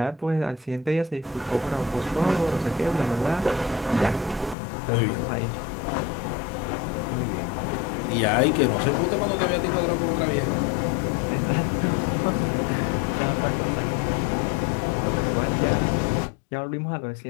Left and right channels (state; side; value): drops out; right; at 4.5 s